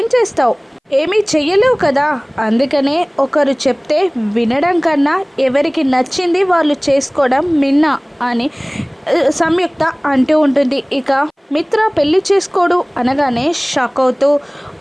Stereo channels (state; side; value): identical; both; correlation 1.00